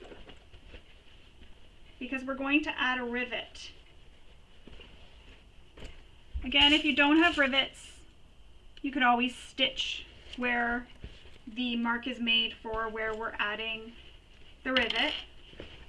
because we're going to add a rivet. Again, if you don't have rivets, you could always stitch where the mark is made for where we're adding the rivet.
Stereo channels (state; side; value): identical; both; correlation 1.00